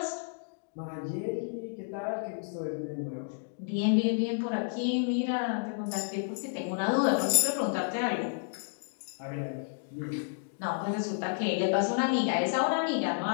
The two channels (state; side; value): silent; right; digital silence